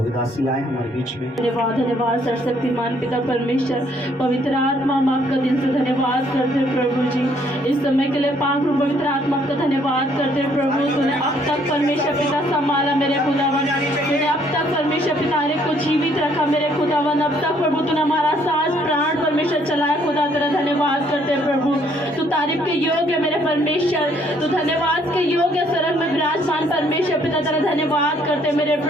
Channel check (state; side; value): normal; both; correlation 0.66